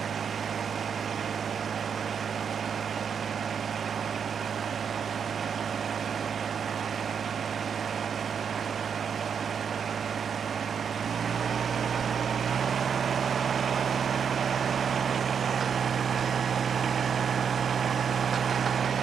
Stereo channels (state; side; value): quieter; left; 7.1 dB